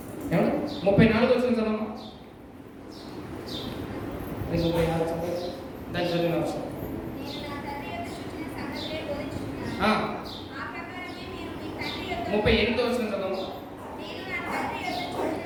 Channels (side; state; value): both; identical; correlation 1.00